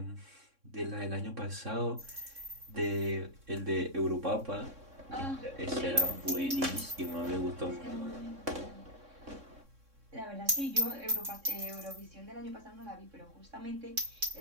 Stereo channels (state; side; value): late; left; 3.6 ms